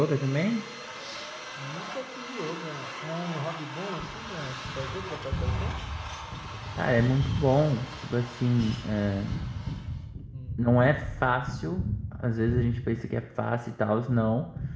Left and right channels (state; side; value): identical; both; correlation 1.00